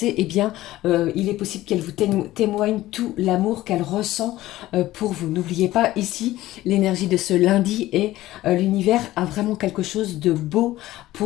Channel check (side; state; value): right; quieter; 15.9 dB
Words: eh bien il est possible qu'elle vous témoigne tout l'amour qu'elle ressent pour vous. N'oubliez pas ici l'énergie de ce lundi, et l'univers a vraiment quelque chose de beau